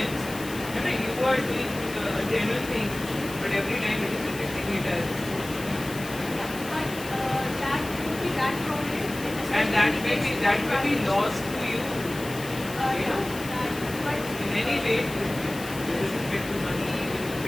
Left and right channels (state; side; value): noise; left; hiss, 13 dB below the sound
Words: you are doing a genuine thing, but every time it is rejecting it as. That would be that problem. And that may be lost to you. But in any way, with respect to money, with